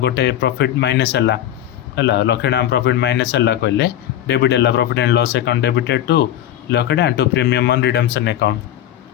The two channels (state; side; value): quieter; right; 11.8 dB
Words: गोटे प्रॉफिट माइनस है 1 लाख टाँह प्रॉफिट माइनस है कहले डेबिट है profit and loss account debited to 1 lakh टाँह to premium on redemption account